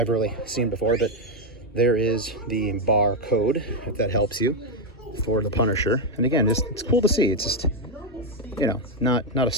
really seen before, but there is the barcode, if that helps you, for the Punisher. And again, it's cool to see. It's just, you know, not a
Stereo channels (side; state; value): both; normal; correlation 0.03